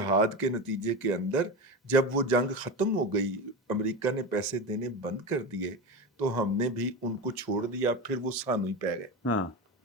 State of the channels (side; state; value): both; normal; correlation 0.22